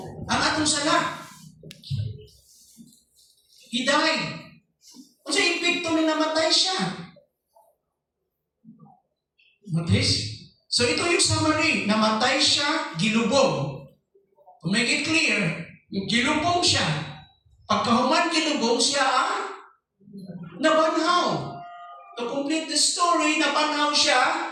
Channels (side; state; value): both; identical; correlation 1.00